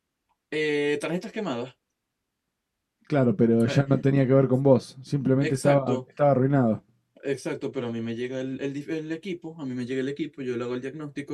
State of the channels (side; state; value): both; identical; correlation 1.00